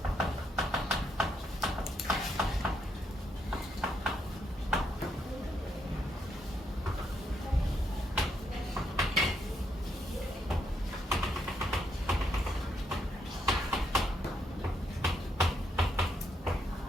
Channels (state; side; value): normal; both; correlation 0.76